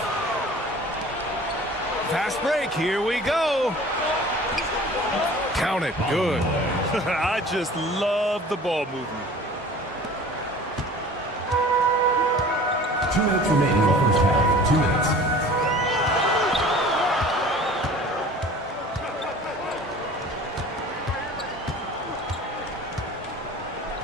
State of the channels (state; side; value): normal; both; correlation 0.44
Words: Fast break. Here we go. Count it. Good. I just love the ball movement. 2 minutes remaining in the first half. 2 minutes.